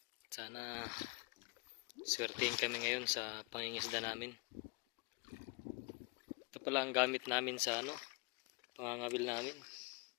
Sana swertein kami ngayon sa pangingisda namin. Ito pala ang gamit namin sa pangangawil namin.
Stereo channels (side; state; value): right; quieter; 27.3 dB